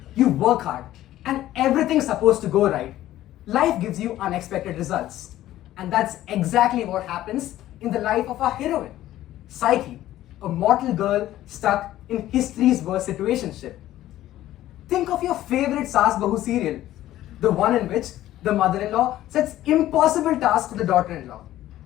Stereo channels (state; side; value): quieter; right; 14.0 dB